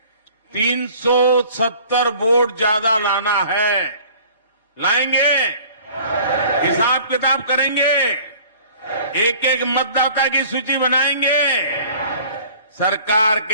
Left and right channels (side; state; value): both; inverted; correlation -0.49